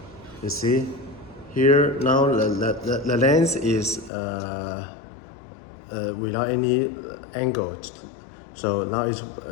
you see here now the lens is without any angle, so now it's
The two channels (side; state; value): right; drops out; at 4.1 s